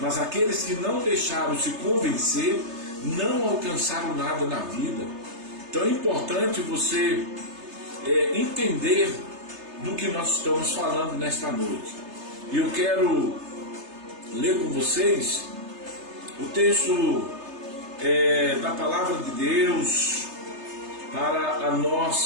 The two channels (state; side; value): late; left; 3.3 ms